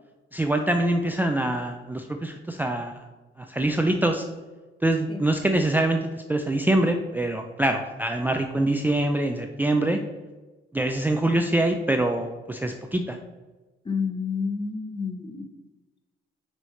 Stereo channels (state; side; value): normal; both; correlation 0.79